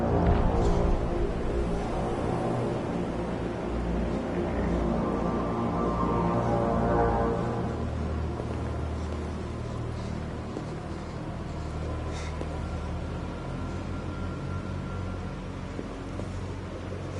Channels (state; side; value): identical; both; correlation 1.00